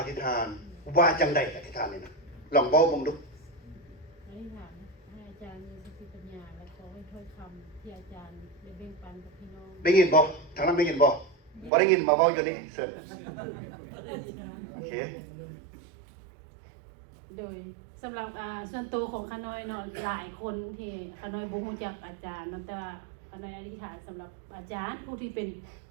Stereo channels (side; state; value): left; drops out; at 11.7 s